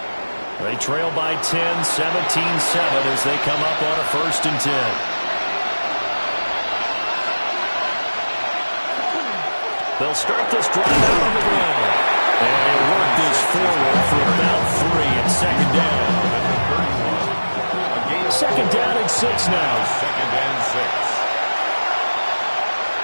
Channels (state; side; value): inverted; both; correlation -1.00